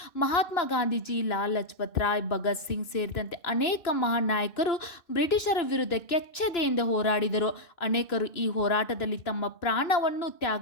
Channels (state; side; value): late; right; 2.6 ms